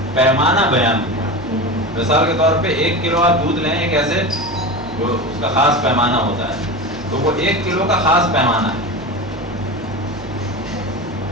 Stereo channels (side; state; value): right; noise; hum, 17 dB below the sound